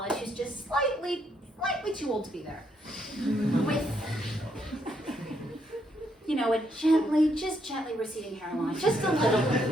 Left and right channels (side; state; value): both; normal; correlation 0.75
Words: who's just slightly too old to be there. With, you know, a gently receding hairline, just a